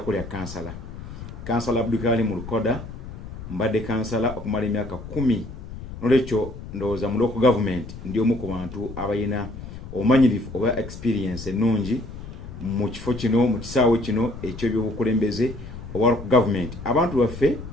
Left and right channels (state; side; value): noise; left; rumble, 12 dB below the sound